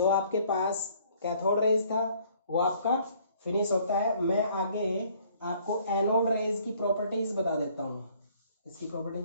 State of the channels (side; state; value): both; inverted; correlation -0.60